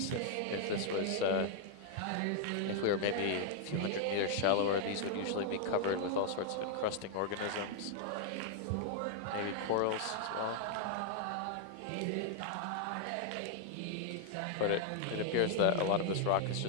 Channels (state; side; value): different; both; correlation 0.00